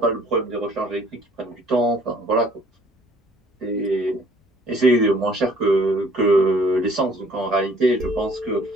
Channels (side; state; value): both; normal; correlation 0.57